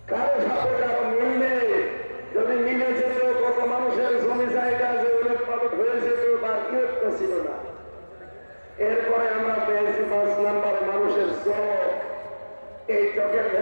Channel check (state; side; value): inverted; both; correlation -1.00